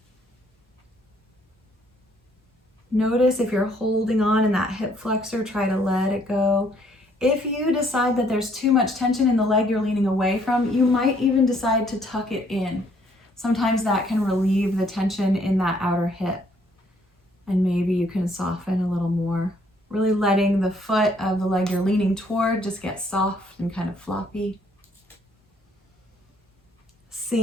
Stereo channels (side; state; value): both; normal; correlation 0.65